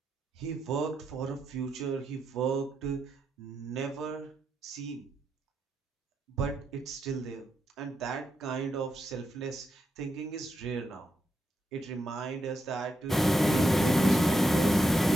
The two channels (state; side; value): normal; both; correlation 0.83